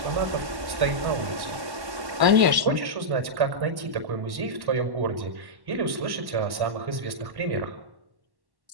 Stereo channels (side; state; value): left; late; 1.1 ms